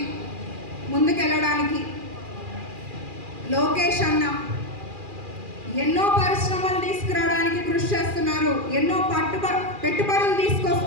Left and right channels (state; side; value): late; left; 2.4 ms